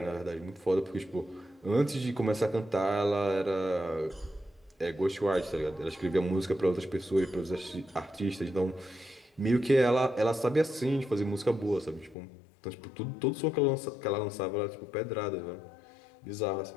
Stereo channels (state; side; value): drops out; right; at 12.2 s